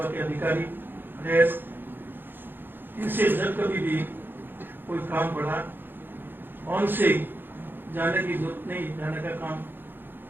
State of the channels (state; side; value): late; left; 0.098 ms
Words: के अधिकारी रहे। इनसे जब कभी भी कोई काम पड़ा, उनसे जाने की जरूरत नहीं, जाने का काम